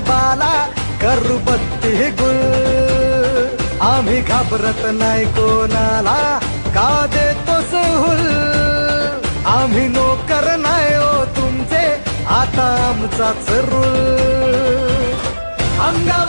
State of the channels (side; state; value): both; inverted; correlation -1.00